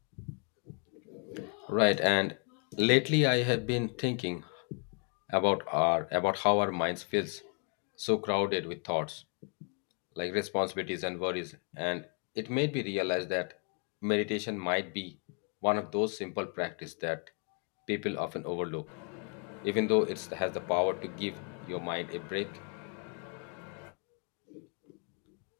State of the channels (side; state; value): right; quieter; 38.7 dB